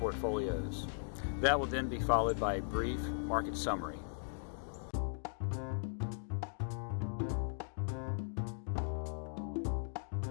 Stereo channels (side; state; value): right; silent; digital silence